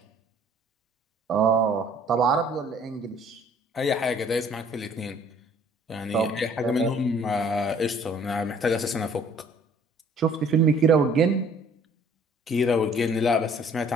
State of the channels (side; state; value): both; normal; correlation 0.56